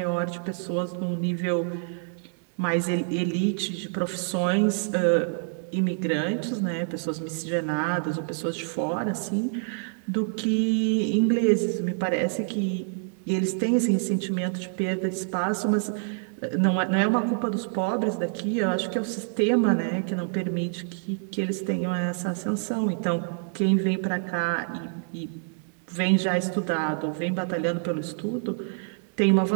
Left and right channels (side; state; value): left; silent; digital silence